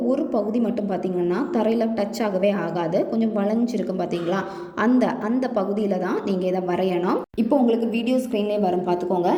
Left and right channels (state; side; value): identical; both; correlation 1.00